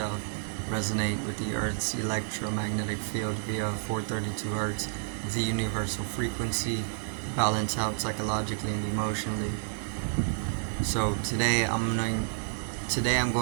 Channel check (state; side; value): silent; left; digital silence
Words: Resonate with the Earth's electromagnetic field via 432 Hz, the universal frequency. Balance out psychologically and emotionally. So today I'm